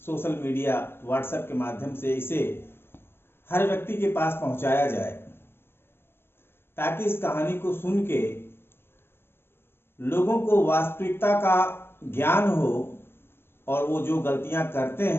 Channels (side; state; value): right; late; 0.11 ms